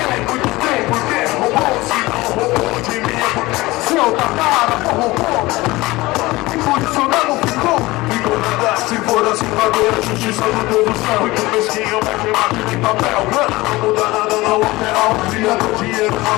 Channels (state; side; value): quieter; right; 20.3 dB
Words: muito tempo, porque roubou, se não roubou de mim. Seu tatara, roubou. E por isso não ficou. Ficou nada, se for assim, agora a justiça do Deus do céu. Muito mesquinho, vai queimar de papel. Não muda nada, não altera o criador. Dinheiro